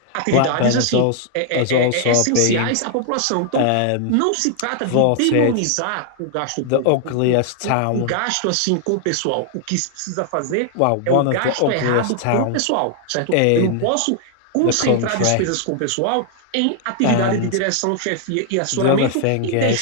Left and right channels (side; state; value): both; different; correlation 0.00